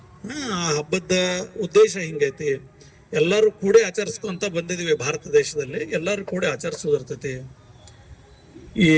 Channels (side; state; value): both; identical; correlation 1.00